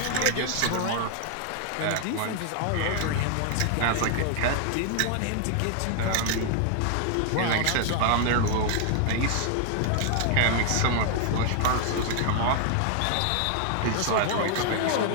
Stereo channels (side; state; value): both; different; correlation 0.00